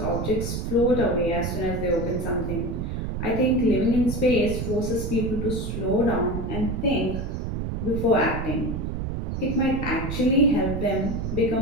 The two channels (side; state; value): right; noise; rumble, 3 dB below the sound